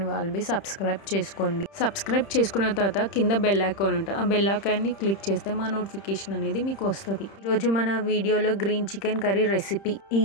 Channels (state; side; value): late; right; 30 ms